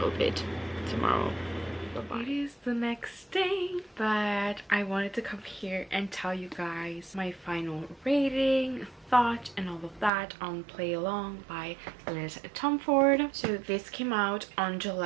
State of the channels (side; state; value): left; drops out; at 10.1 s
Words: it tomorrow. Bye-bye. It is the next day, but I wanted to come here and tell you guys my final rating, thought, and all of that on Play Along by Liz Tomforde. So this came out on